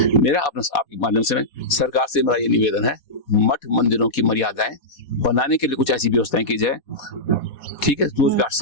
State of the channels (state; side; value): late; right; 4.2 ms